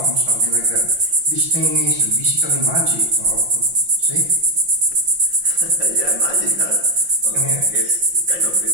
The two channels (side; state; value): left; late; 5.7 ms